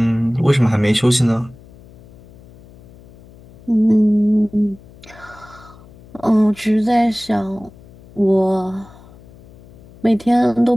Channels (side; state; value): left; noise; hum, 23 dB below the sound